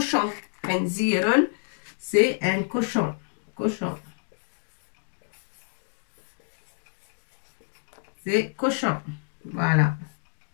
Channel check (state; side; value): silent; right; digital silence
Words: Khinzirun, c'est un cochon. Cochon. C'est cochon. Voilà.